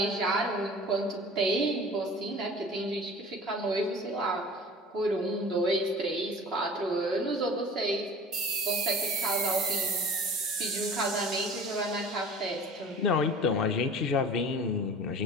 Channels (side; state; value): both; normal; correlation 0.42